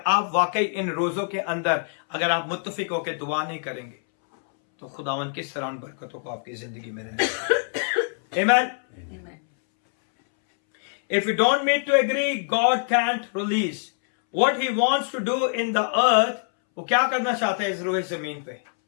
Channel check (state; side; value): silent; right; 62 dB below the other